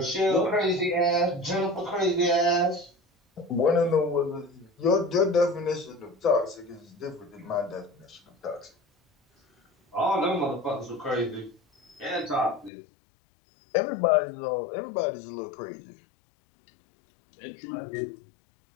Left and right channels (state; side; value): drops out; right; at 12.7 s